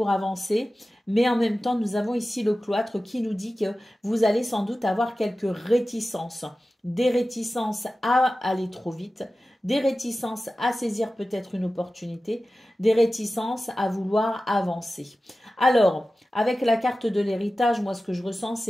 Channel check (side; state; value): both; normal; correlation 0.95